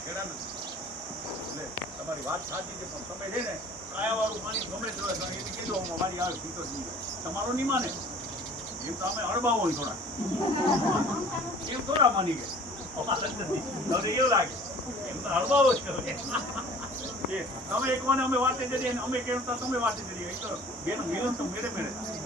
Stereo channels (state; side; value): normal; both; correlation 0.48